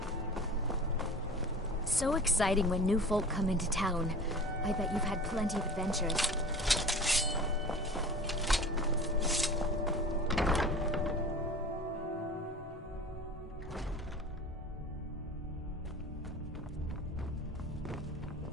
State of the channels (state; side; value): normal; both; correlation 0.39